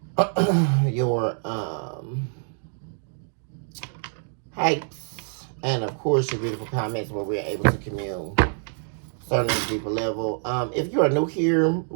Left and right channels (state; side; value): silent; left; 61 dB below the other